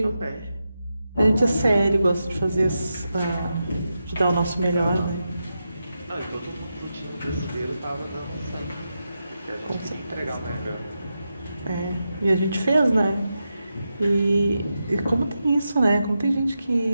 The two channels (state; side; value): inverted; both; correlation -0.88